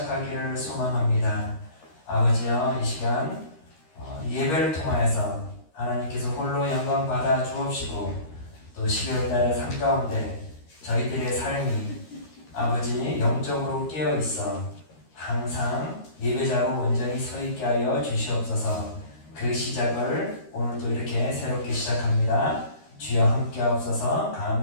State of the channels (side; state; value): right; late; 13 ms